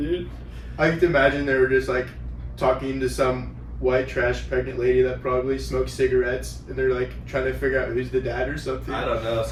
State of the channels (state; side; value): identical; both; correlation 1.00